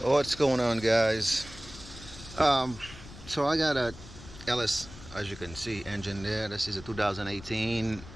What's going on, guys? Um, so I got a LS, as you can see, engine there. This is a 2018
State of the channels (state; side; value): noise; left; rumble, 16 dB below the sound